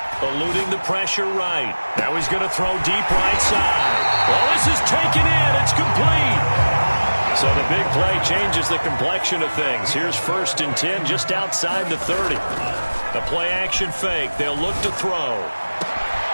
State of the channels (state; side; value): inverted; both; correlation -1.00